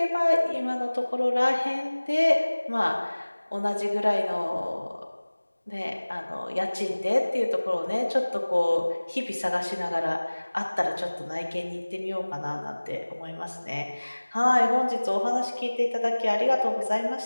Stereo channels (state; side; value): inverted; both; correlation -1.00